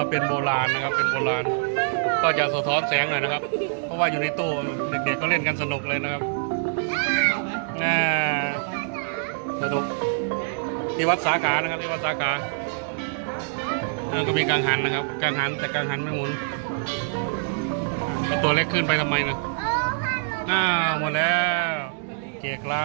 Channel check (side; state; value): left; silent; digital silence